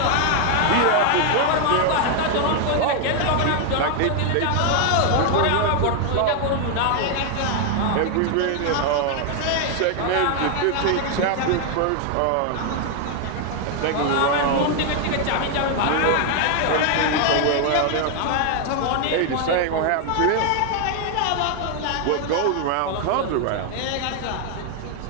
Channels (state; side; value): different; both; correlation 0.00